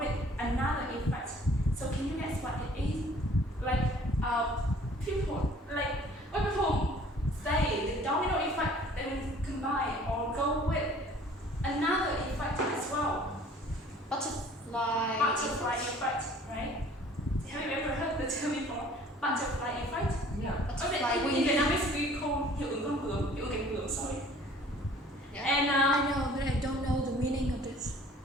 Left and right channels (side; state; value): both; normal; correlation 0.53